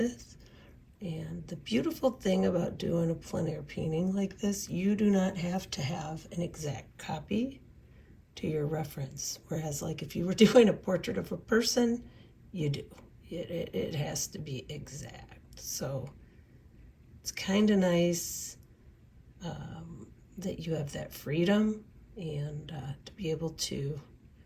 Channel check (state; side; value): identical; both; correlation 1.00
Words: And the beautiful thing about doing a plein air painting like this, you do not have to have an exact copy to your reference. Whereas like if you were doing a portrait of a person, you do. It has to be exact. So it's kind of nice that you have that freedom and to be able to